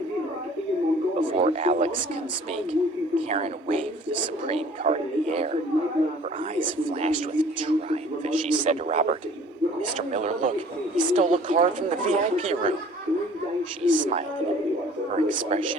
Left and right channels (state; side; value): normal; both; correlation 0.51